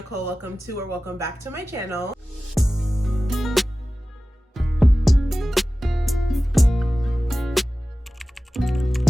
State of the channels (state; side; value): normal; both; correlation 0.96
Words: Welcome back to my channel.